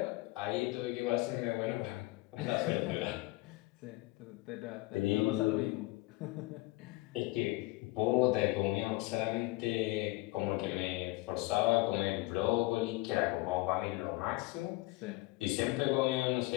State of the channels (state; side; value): quieter; right; 21.5 dB